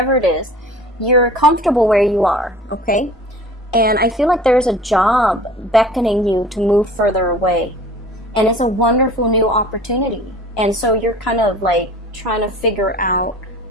it is. you're comfortable where you are, okay? And I feel like there's a job beckoning you to move further away. And it's a wonderful new opportunity. And so you're kind of like trying to figure out,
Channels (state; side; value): normal; both; correlation 0.44